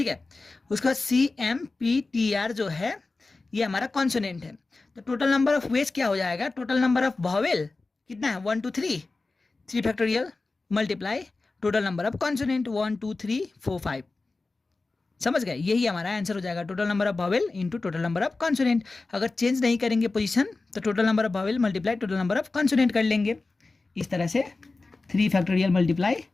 है। उसके बाद CMPTR जो है ये हमारा कॉन्सोनेंट है। तो टोटल नंबर ऑफ वेज क्या हो जाएगा, टोटल नंबर ऑफ वॉवेल कितना है, 1 2 3 factorial multiply total number of consonant 1 2 3 4 5। समझ गए, यही हमारा आंसर हो जाएगा, total number of vowel into total number of consonant. अगर चेंज नहीं करेंगे पोजीशन तो total number of vowel multiply total number of consonant कर लेंगे। इस तरह से 3 फैक्टोरियल मल्टीप्लाई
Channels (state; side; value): quieter; right; 3.6 dB